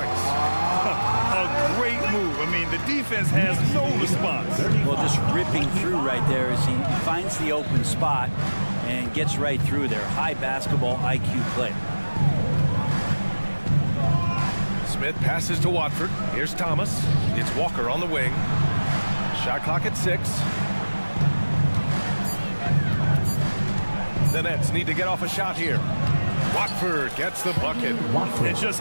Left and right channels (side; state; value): both; inverted; correlation -1.00